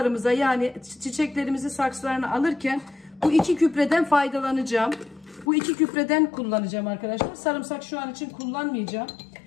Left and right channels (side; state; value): right; drops out; at 5.5 s